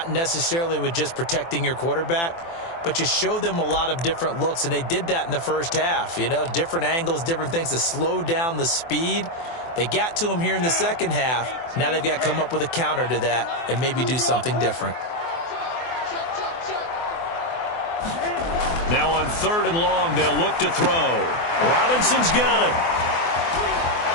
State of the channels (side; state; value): right; late; 24 ms